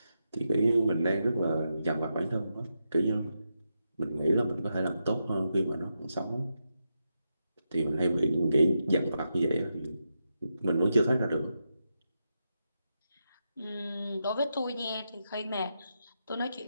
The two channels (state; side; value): inverted; both; correlation -0.86